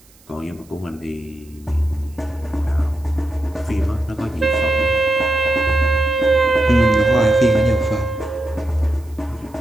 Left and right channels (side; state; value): right; noise; hiss, 29 dB below the sound